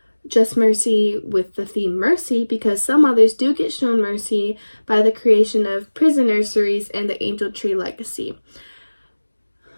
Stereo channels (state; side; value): inverted; both; correlation -1.00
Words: Just Mercy with the theme mercy, because some mothers do get shown mercy by the creation of prison nurseries and the Angel Tree Legacy.